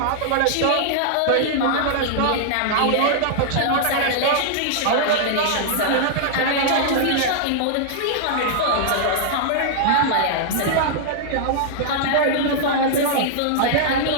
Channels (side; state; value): both; different; correlation -0.01